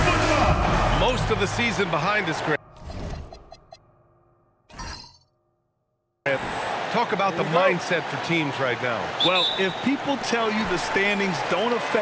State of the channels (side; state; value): both; identical; correlation 1.00